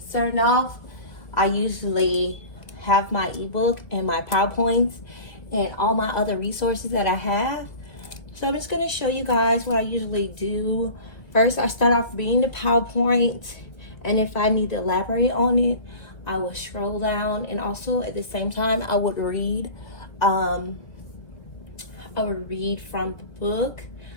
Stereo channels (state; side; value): late; right; 1.7 ms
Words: off, I usually have my ebook and my PowerPoints and all my other resources that I have. So I'm just going to show you guys what I usually do. First, I start off reading the PowerPoint, and if I need to elaborate on it, I will scroll down, and also at the same time I would read from the book,